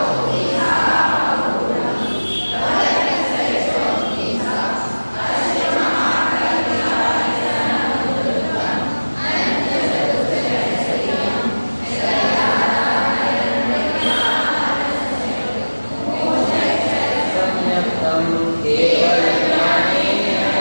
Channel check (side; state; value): both; inverted; correlation -1.00